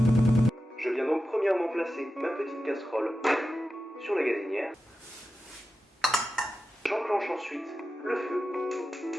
Je viens donc premièrement placer ma petite casserole sur la gazinière. J'enclenche ensuite le feu.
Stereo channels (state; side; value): normal; both; correlation 0.92